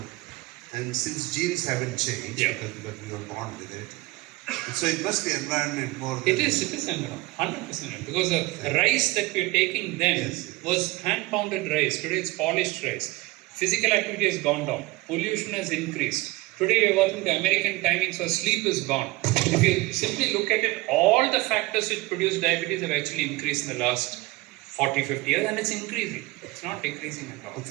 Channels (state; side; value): quieter; left; 20.7 dB